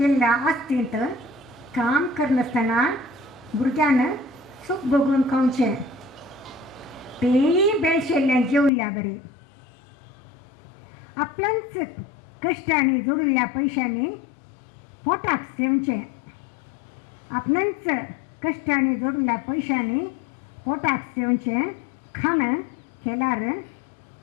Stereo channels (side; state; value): right; drops out; at 8.7 s